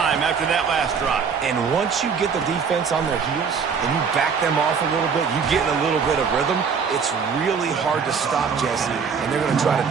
after that last drive. And once you get the defense on their heels and you back them off a little bit, you get in a little bit of rhythm, it's really hard to stop, Jesse, and they're going to try to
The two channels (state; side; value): quieter; left; 6.1 dB